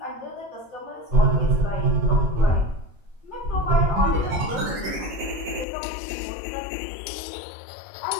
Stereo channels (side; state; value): right; drops out; at 5.7 s